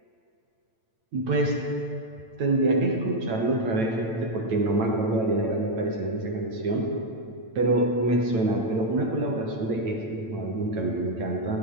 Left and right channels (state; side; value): late; left; 8.9 ms